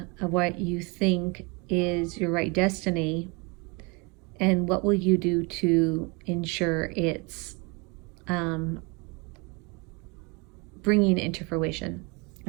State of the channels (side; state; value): left; quieter; 29.6 dB